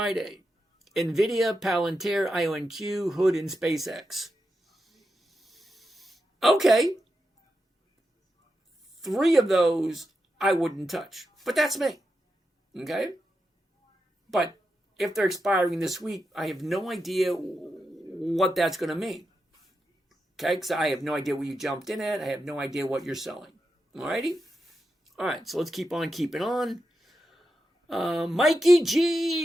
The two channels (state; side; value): normal; both; correlation 0.88